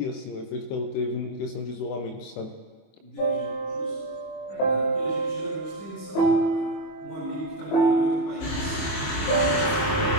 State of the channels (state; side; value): late; right; 24 ms